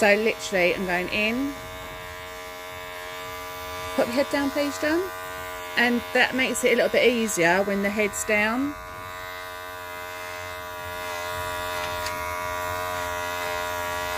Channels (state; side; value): identical; both; correlation 1.00